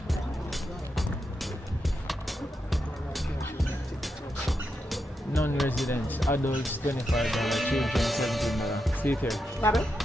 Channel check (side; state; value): both; normal; correlation 0.85